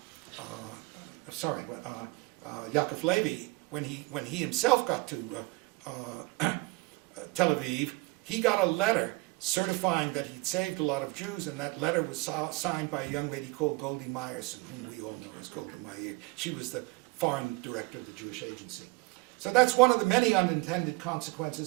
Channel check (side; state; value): left; quieter; 25.2 dB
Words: Yakov Levy, when he himself got to Tel Aviv, he got a letter certifying that he'd saved a lot of Jews, and that letter was signed by a young lady called Goldie Meyerson, whom we all know as Golda Meir. She was the foreign director of the Jewish Agency. So that's one of the many unintended